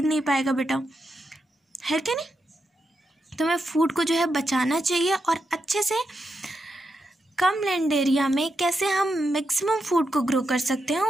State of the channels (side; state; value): both; normal; correlation 0.85